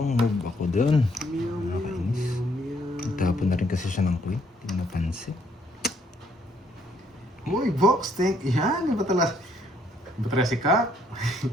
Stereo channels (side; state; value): both; normal; correlation 0.68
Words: move ako dun. Meow. Tapon na rin kasi siya ng queen. Hindi ko napansin. Uy, box, thank yan. Iba talaga si Kap.